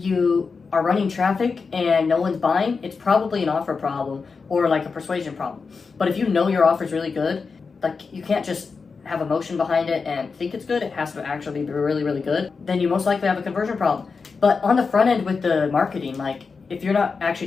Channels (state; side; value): quieter; right; 4.9 dB